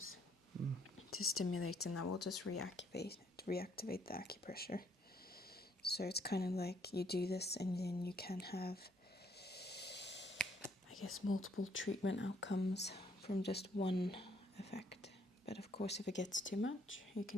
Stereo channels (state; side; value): normal; both; correlation 0.68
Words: to stimulate, and that will just reactivate the acupressure. So it's kind of like you do this and then you can have, I guess, multiple treatment outcomes from just one effect. But of course, if it gets too much, you